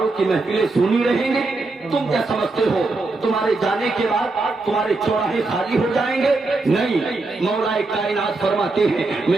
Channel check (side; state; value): left; quieter; 3.4 dB